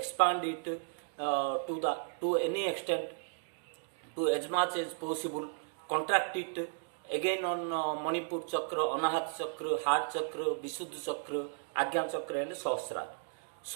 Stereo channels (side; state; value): left; silent; digital silence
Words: it, to any extent, to as much as possible, contract it again on Manipur Chakra, Anahat Chakra, Heart Chakra, Visuddha Chakra, Agya Chakra and Sahasrara.